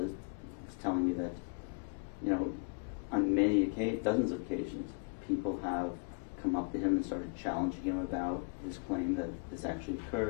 telling me that, on dozens of occasions, people have come up to him and started challenging him about his claim that this actually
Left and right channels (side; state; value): right; quieter; 36.5 dB